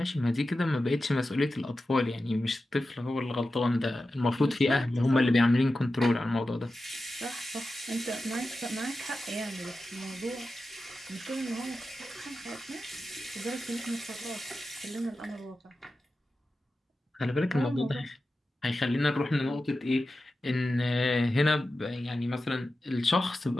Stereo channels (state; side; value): normal; both; correlation 0.92